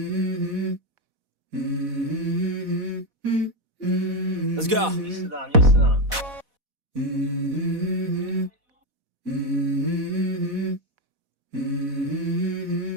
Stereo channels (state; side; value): late; left; 4.1 ms